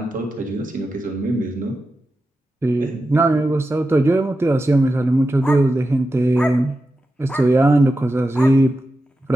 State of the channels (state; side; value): normal; both; correlation 0.91